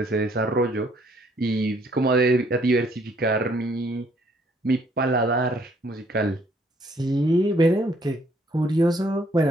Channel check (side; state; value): both; normal; correlation 0.65